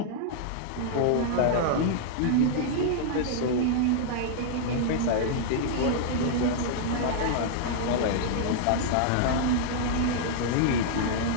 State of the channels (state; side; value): different; both; correlation -0.01